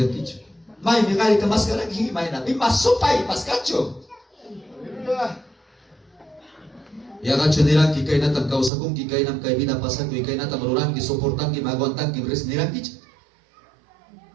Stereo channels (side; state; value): left; drops out; at 8.7 s